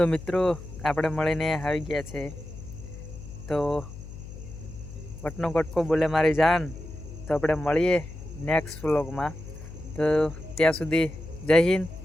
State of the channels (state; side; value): noise; left; hum, 13 dB below the sound